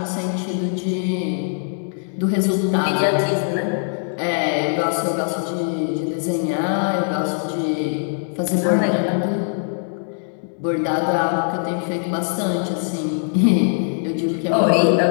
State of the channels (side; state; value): right; silent; digital silence